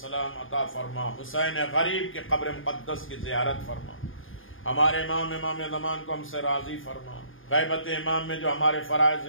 عطا فرما، حسین غریب کی قبر مقدس کی زیارت فرما، ہمارے امام زمان کو ہم سے راضی فرما، غیبت امام میں جو ہمارے فرائض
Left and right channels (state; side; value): late; right; 0.58 ms